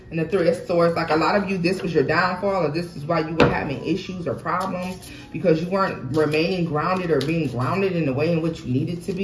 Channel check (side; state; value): both; identical; correlation 1.00